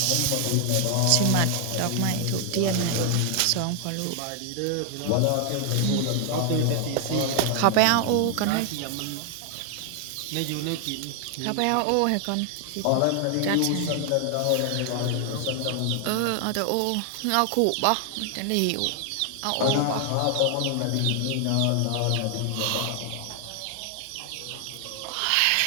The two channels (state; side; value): different; both; correlation 0.00